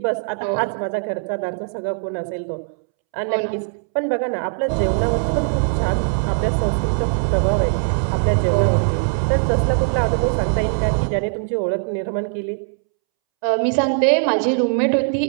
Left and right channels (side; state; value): left; silent; 65 dB below the other